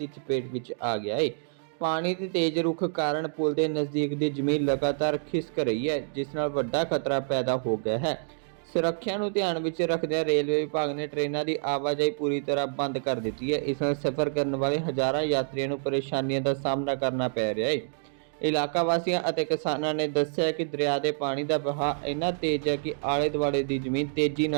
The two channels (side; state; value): left; silent; digital silence